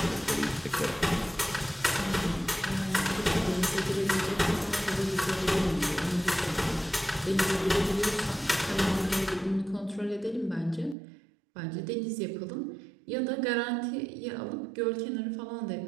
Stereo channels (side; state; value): left; drops out; at 11.0 s